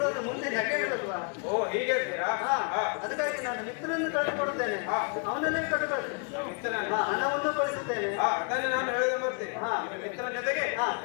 ಮುಂದೆ ನೆಗೆಯಿಡಲ್ವಾ? ಓ, ಹೀಗೆ ಇದ್ದೀರಾ? ಹಾ. ಹಾ. ಅದಕ್ಕಾಗಿ ನಾನು ಮಿತ್ರನನ್ನು ಕಳಿಸಿಕೊಡುತ್ತೇನೆ. ಹಾ. ಅವನಲ್ಲಿ ಕಟ್ಟು ಕಳಿಸ್ತೇನೆ. ಮಿತ್ರನನ್ನು. ಹಣವನ್ನು ಕಳಿಸುತ್ತೇನೆ. ಹಾ, ಅದನ್ನೇ ನಾನು ಹೇಳಿದ ಬರ್ತೀನಿ. ಹಾ. ನಿಮ್ಮ ಮಿತ್ರನ ಜೊತೆಗೆ ಹಾ.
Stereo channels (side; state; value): right; quieter; 37.7 dB